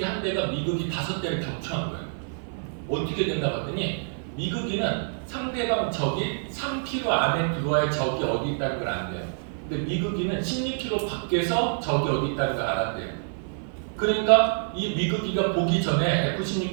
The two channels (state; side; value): silent; left; 60 dB below the other